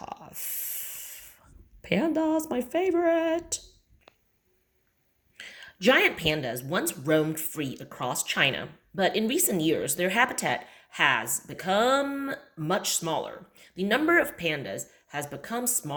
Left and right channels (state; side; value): identical; both; correlation 1.00